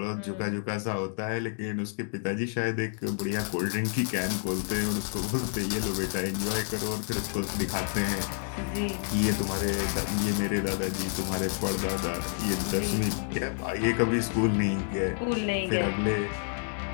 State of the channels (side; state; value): right; silent; 58 dB below the other